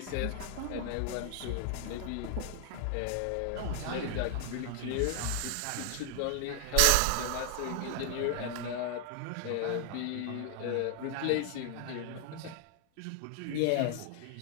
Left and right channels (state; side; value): different; both; correlation 0.00